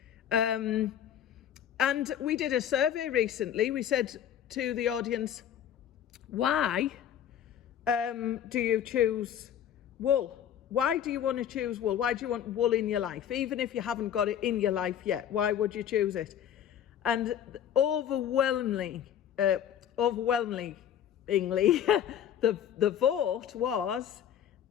And we did a survey recently. We said to the audience, why do you choose wool? Why do you want to choose wool? Why do you want wool in your life? Even if you haven't got it in your life yet, why would you choose it? And overwhelmingly, the vote was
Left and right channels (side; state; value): right; quieter; 9.7 dB